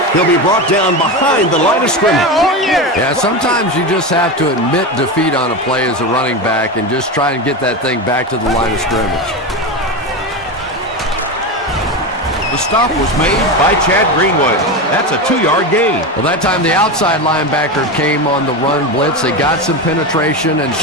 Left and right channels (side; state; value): both; normal; correlation 0.19